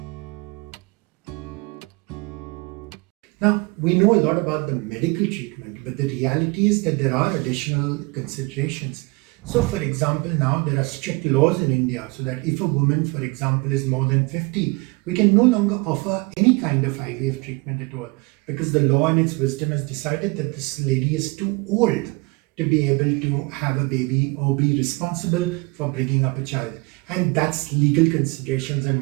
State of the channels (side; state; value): left; quieter; 26.5 dB